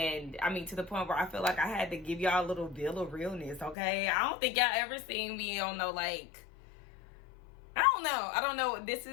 I mean, to the point where I feel like I had to give y'all a little bill of realness, okay? I don't think y'all ever seen me on no, like, I don't know. This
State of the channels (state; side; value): drops out; right; at 3.8 s